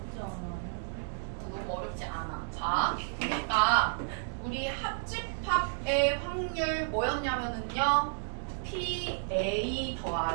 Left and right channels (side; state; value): left; silent; 56 dB below the other